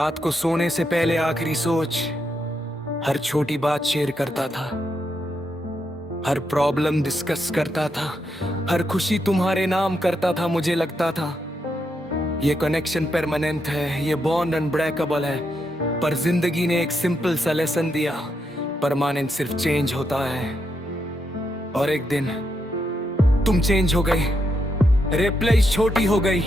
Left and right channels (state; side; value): normal; both; correlation 0.81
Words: को सोने से पहले आखिरी सोच। हर छोटी बात शेयर करता था, हर प्रॉब्लम डिस्कस करता था, हर खुशी तुम्हारे नाम करता था। मुझे लगता था ये कनेक्शन परमानेंट है, ये बॉन्ड अनब्रेकेबल है। पर जिंदगी ने एक सिंपल सा लेसन दिया, परमानेंट सिर्फ चेंज होता है। और एक दिन तुम चेंज हो गई, रिप्लाईज छोटी हो गई,